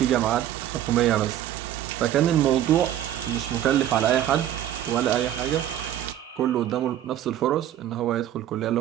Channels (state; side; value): quieter; left; 11.6 dB